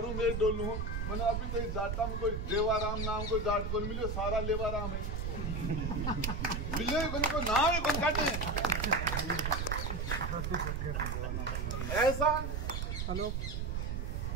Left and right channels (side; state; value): right; noise; rumble, 2 dB below the sound